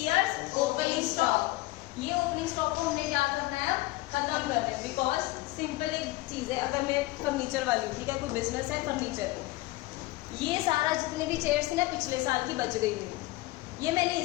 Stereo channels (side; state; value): right; quieter; 19.5 dB